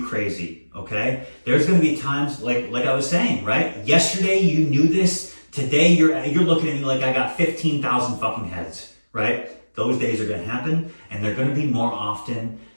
crazy, okay? There's gonna be times, like I was saying, right? Yesterday you knew this. Today you're looking at me like I got 15,000 fucking heads, right? Those days are gonna happen, and they're gonna be more often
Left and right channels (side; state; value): both; inverted; correlation -1.00